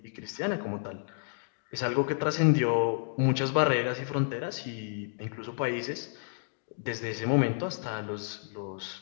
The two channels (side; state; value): right; silent; digital silence